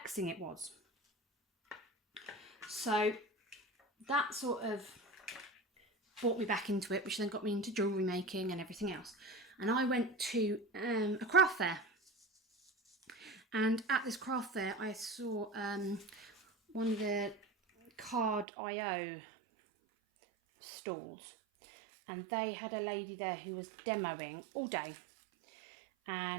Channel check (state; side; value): drops out; left; at 18.4 s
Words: it was. So that sort of brought me back into it, which then got me into jewellery making and everything else. And I went to a craft fair. And at this craft fair, I saw one of the card.io stalls. And they had a lady there who was demoing all day.